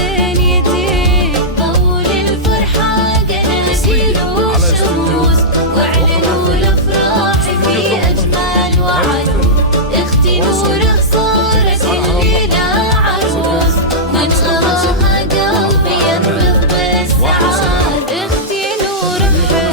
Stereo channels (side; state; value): both; normal; correlation -0.12